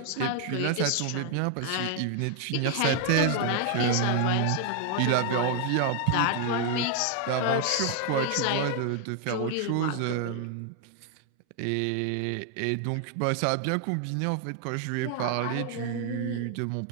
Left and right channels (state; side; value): different; both; correlation 0.00